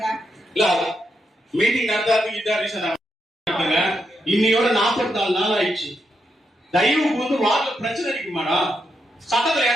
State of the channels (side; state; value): both; normal; correlation 0.82